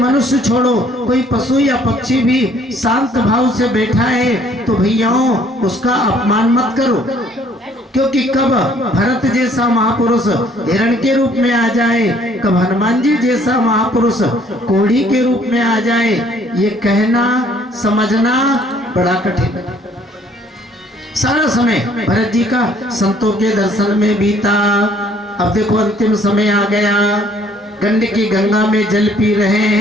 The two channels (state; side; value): normal; both; correlation 0.61